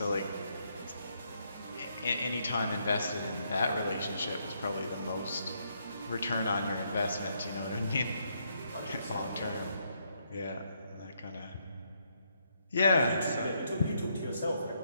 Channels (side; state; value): both; inverted; correlation -0.75